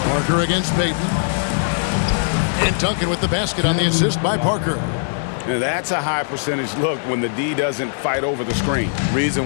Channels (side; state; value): right; silent; digital silence